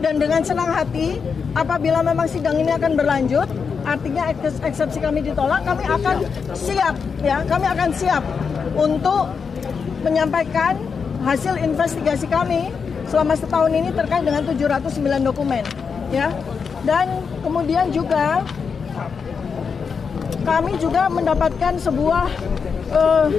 dengan senang hati apabila memang sidang ini akan berlanjut, artinya eksepsi kami ditolak, kami akan siap untuk menyampaikan hasil investigasi kami selama setahun ini terkait dengan 709 dokumen ya. Dan kemudian juga kami juga mendapatkan sebuah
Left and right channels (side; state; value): right; quieter; 5.8 dB